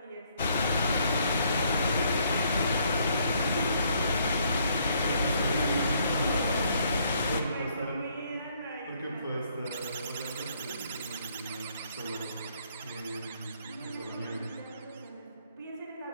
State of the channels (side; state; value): both; inverted; correlation -0.68